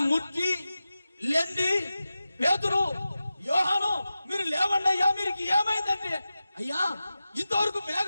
ముట్టి లేండి, పేతురు, యోహాను, మీరు లేవండి అయ్యా, మీరు ఏమైందంటే, అయ్యా ఇంతవరకు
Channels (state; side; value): inverted; both; correlation -0.94